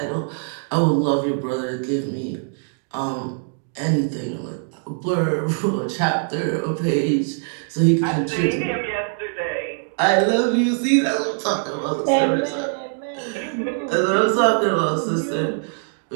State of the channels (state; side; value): silent; left; digital silence